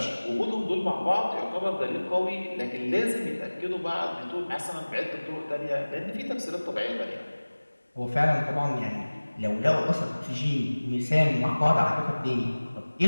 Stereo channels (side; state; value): both; inverted; correlation -1.00